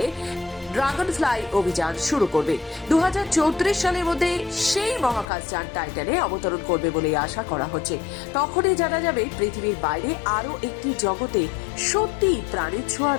ড্রাগন ফ্লাই অভিযান শুরু করবে। 2034 সালের মধ্যে সেই মহাকাশযান টাইটানে অবতরণ করবে বলে আশা করা হচ্ছে। তখনই জানা যাবে পৃথিবীর বাইরে আরও একটি জগতে সত্যি প্রাণের ছোঁয়া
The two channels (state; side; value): drops out; right; at 5.2 s